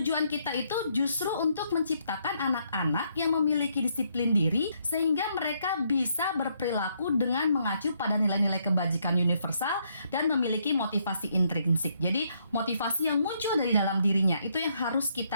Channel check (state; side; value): inverted; both; correlation -0.73